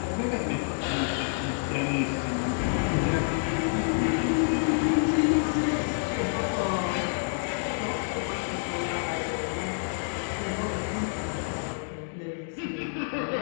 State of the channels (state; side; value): silent; right; digital silence